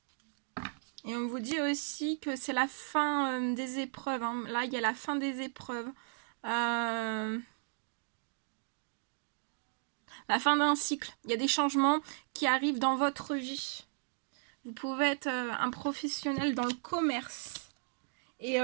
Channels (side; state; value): left; silent; digital silence